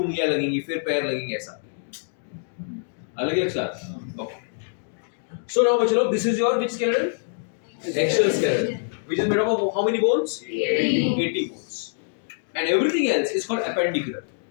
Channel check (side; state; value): right; silent; digital silence